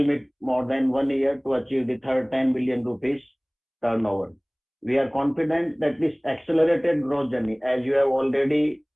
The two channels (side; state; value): both; identical; correlation 1.00